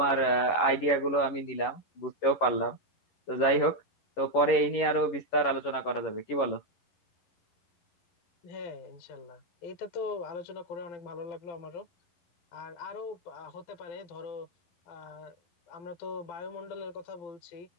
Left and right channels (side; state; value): right; late; 11 ms